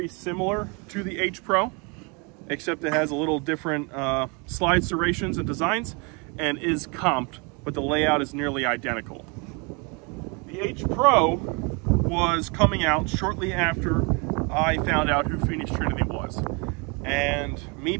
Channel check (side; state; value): left; quieter; 31.8 dB